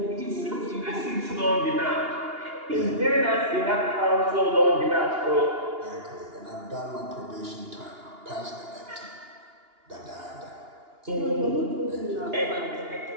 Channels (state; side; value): late; left; 2.8 ms